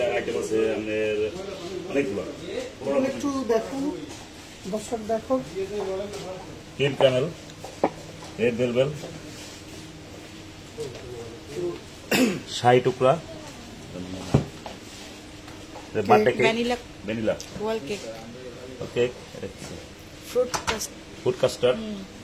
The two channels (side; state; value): both; identical; correlation 1.00